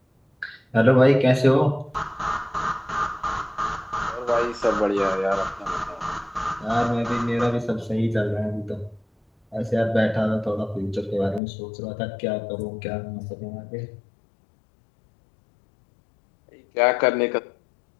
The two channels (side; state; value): right; drops out; at 11.4 s